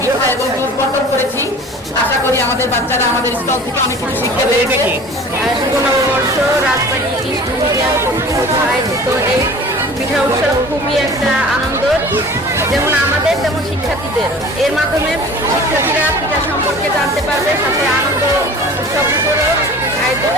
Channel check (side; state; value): both; normal; correlation 0.43